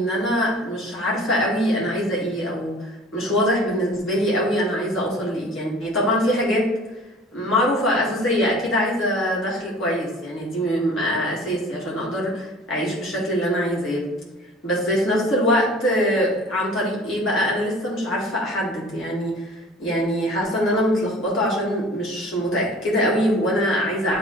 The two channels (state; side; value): normal; both; correlation 0.46